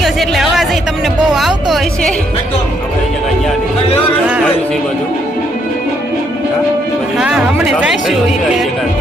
ગયો છે એટલે અવાજ તમને બહુ આવતો હોય છે. હા, હમણે જઈશું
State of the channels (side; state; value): both; normal; correlation 0.72